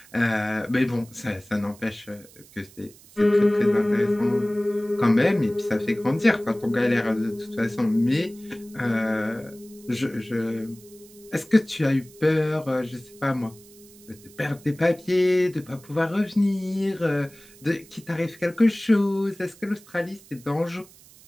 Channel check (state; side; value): noise; right; hiss, 24 dB below the sound